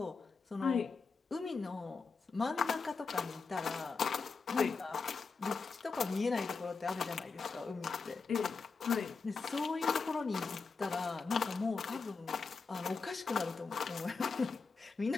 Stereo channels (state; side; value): quieter; right; 4.6 dB